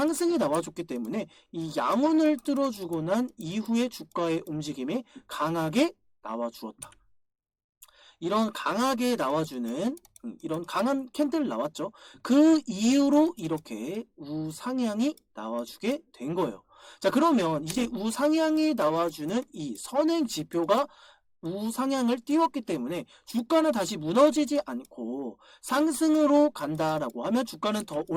나와줬기 때문에 이 양운을 뚫어주고 난 이후에 주가의 움직임이 강하게 나와주었다. 이런 강하게 나와주는 이런 강한 캔들 나왔죠. 그 이후로 이렇게 우상향이 나와주게 된 거예요. 자, 그러면 이제 우상향이 나와주는 이 선행 지표가 우상향을 띄웠기 때문에 주가는 다시 무너지지 않고 상승으로 간다라고 하면 주가는 더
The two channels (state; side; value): identical; both; correlation 1.00